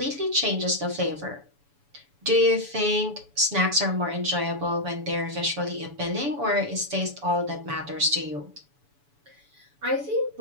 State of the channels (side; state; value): left; late; 7.0 ms